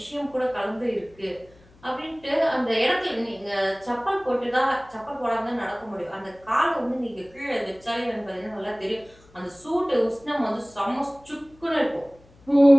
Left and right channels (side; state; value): left; noise; hum, 27 dB below the sound